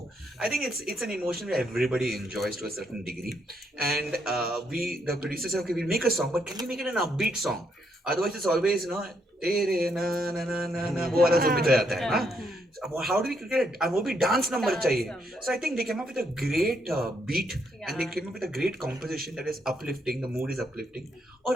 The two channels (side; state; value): both; normal; correlation 0.75